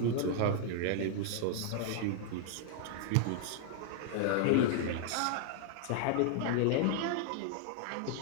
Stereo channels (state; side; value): different; both; correlation 0.00